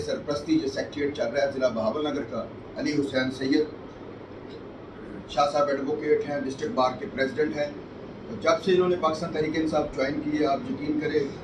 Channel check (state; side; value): identical; both; correlation 1.00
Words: سرپرستی یہ سیکریٹریٹ چل رہا ہے ضلع بہاول نگر کا، علی حسین سید شاہ صاحب ایڈوکیٹ ہیں، ڈسٹرکٹ بار کے پریزیڈنٹ ہیں۔ جب سے انہوں نے پاکستان تحریک انصاف جوائن کی ہے، آپ یقین کریں